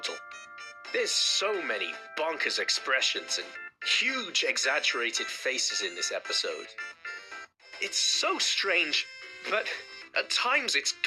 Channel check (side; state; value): both; identical; correlation 1.00